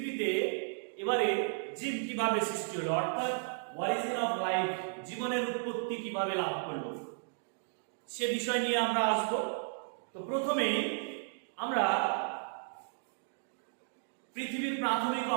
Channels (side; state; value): left; silent; digital silence